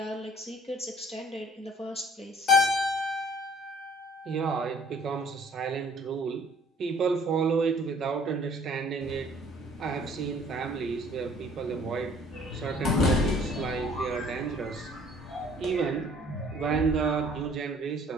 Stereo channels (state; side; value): normal; both; correlation 0.55